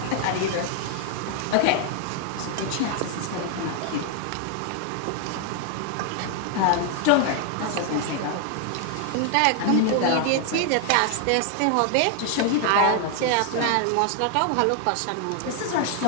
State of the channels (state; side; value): different; both; correlation 0.00